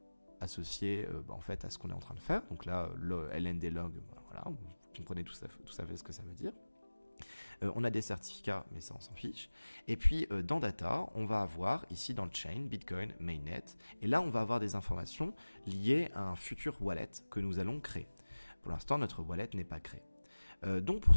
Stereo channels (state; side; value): inverted; both; correlation -1.00